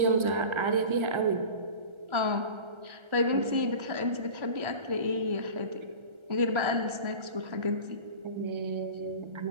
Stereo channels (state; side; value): late; left; 1.3 ms